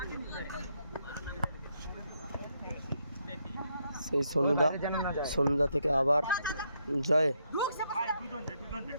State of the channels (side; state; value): both; inverted; correlation -0.77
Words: সেই সন্ধ্যা থেকে আবার জয়।